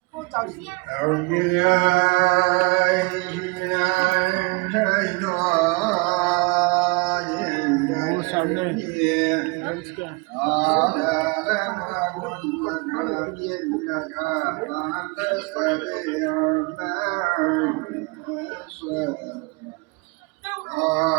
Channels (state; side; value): quieter; left; 28.2 dB